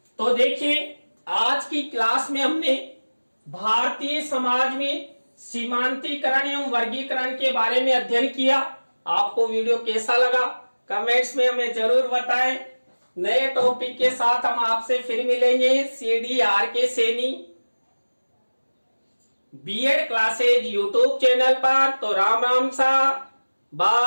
तो देखिए आज की क्लास में हमने भारतीय समाज में सीमांतीकरण एवं वर्गीकरण के बारे में अध्ययन किया। आपको वीडियो कैसा लगा कमेंट्स में हमें जरूर बताएं। नए टॉपिक के साथ हम आपसे फिर मिलेंगे CDRK Saini B Ed classes YouTube channel पर। तो राम राम सा,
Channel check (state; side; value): inverted; both; correlation -1.00